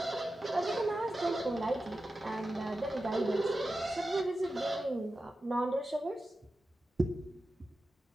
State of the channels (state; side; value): normal; both; correlation 0.92